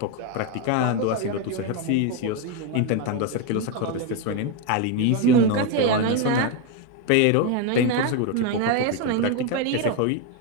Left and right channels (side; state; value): both; different; correlation 0.02